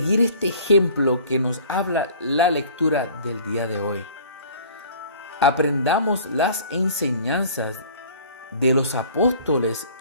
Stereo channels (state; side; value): inverted; both; correlation -0.48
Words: este ejemplo que nos habla la lectura del día de hoy. Aprendamos las enseñanzas de los apóstoles